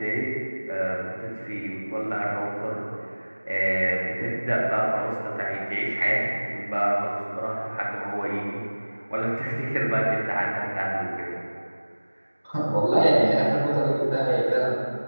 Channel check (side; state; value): both; inverted; correlation -1.00